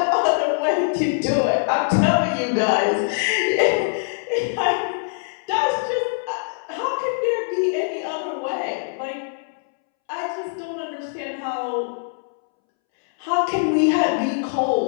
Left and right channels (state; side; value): silent; right; 64 dB below the other